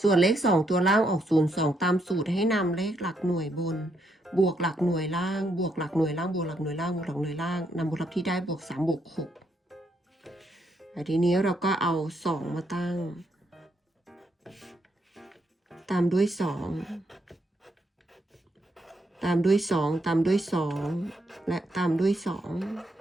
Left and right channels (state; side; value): normal; both; correlation 0.76